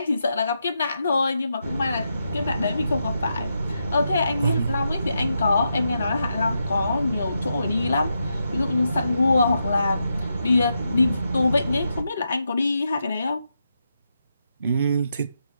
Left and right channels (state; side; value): inverted; both; correlation -0.84